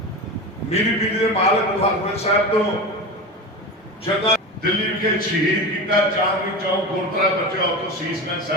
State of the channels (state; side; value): normal; both; correlation 0.26